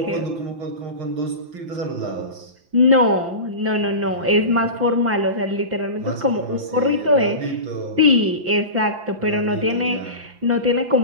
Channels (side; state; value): left; late; 5.9 ms